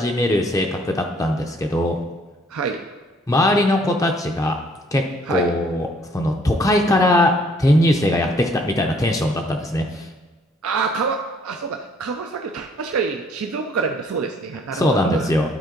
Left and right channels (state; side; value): normal; both; correlation 0.62